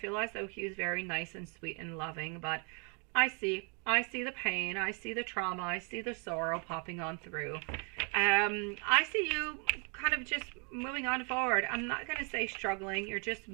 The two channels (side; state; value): left; quieter; 36.5 dB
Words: as though he was very nice and sweet and loving, but I see the pain, I see the trauma, I see the sorrow popping on through. I see you kind of just moving on forward. I'm not going to say struggling, you're just